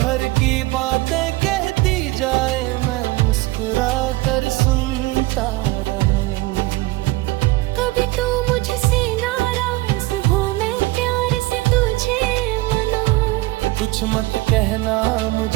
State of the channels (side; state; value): left; quieter; 19.9 dB